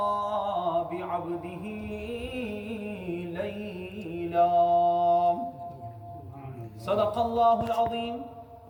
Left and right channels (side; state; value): both; identical; correlation 1.00